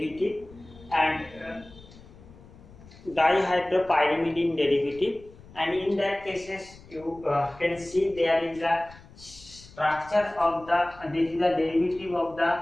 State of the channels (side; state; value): left; noise; rumble, 22 dB below the sound